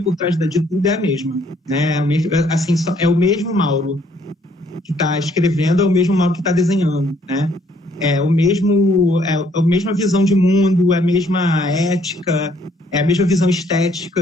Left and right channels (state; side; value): normal; both; correlation 0.65